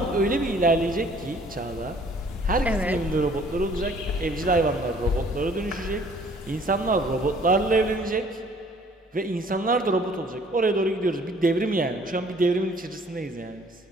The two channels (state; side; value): normal; both; correlation 0.57